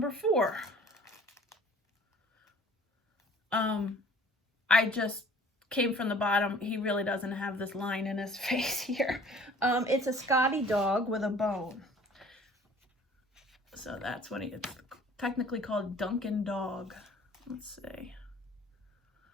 4. I just came from the bottom. He really doesn't have this line in his face here. It's a Scotty dog with a bone. So that's what it's technically called Duncan Dog. Let's see.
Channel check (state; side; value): normal; both; correlation 0.50